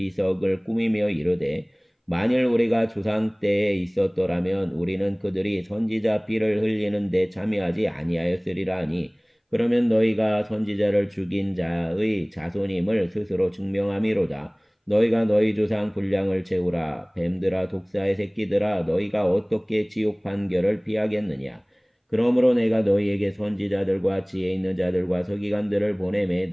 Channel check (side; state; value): both; identical; correlation 1.00